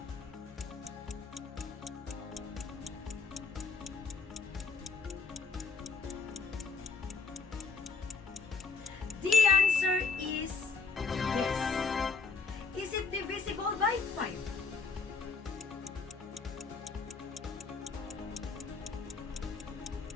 The answer is yes. Is it divisible by 5?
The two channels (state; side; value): quieter; right; 4.8 dB